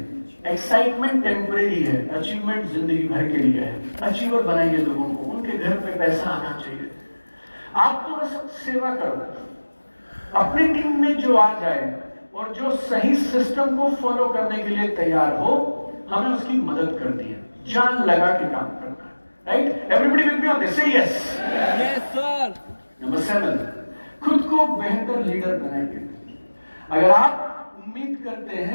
एक्साइटमेंट टेम्परेरी है, अचीवमेंट जिंदगी भर के लिए है। अचीवर बनाइए लोगों को, उनके घर पे पैसा आना चाहिए। आप तो बस सेवा करो, अपनी टीम में जो आ जाए और जो सही सिस्टम को फॉलो करने के लिए तैयार हो, हमें उसकी मदद करनी है, जान लगा के काम करना है, right? Everybody will be on this, say yes sir. Number 7, खुद को बेहतर लीडर बनाइए। अगर आप उम्मीद करते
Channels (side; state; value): both; inverted; correlation -1.00